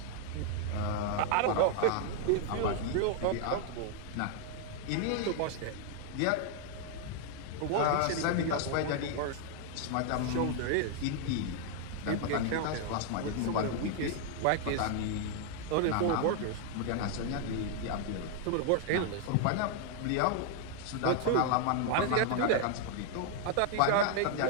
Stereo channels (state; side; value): different; both; correlation 0.00